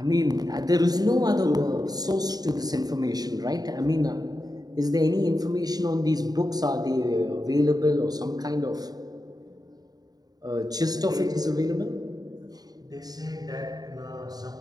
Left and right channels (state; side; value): late; left; 0.19 ms